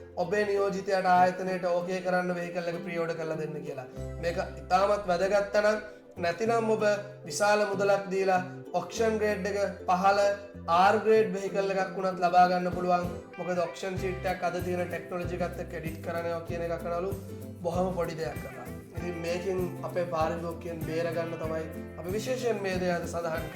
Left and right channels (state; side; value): identical; both; correlation 1.00